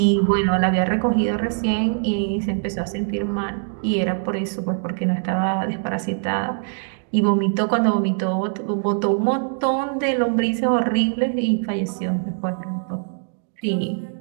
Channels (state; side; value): silent; left; 64 dB below the other